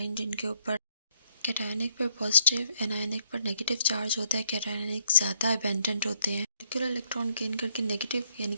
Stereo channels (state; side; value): inverted; both; correlation -0.71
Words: जिनके ऊपर कैटायनिक पर पॉजिटिव, एनायनिक पर नेगेटिव चार्ज होता है। कैटायनिक ज़्यादा अबेंडेंट होते हैं। मॉलिक्यूलर इलेक्ट्रॉन गेन करके नेगेटिव यानी